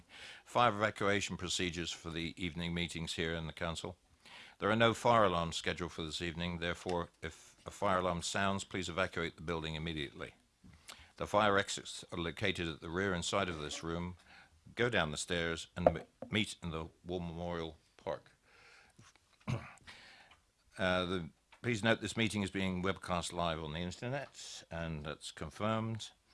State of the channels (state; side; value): identical; both; correlation 1.00